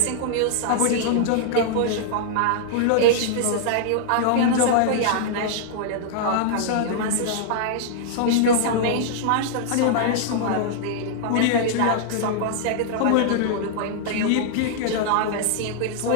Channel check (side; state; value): both; different; correlation -0.01